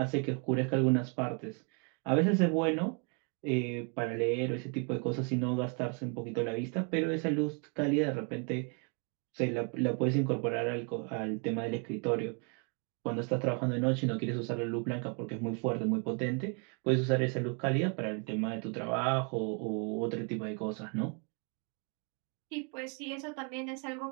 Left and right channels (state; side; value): quieter; left; 37.5 dB